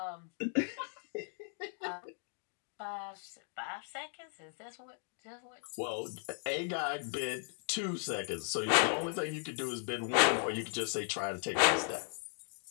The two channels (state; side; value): silent; right; 53 dB below the other